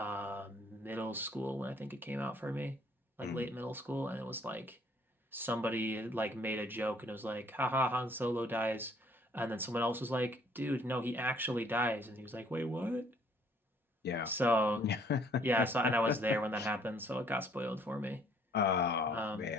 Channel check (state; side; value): normal; both; correlation 0.61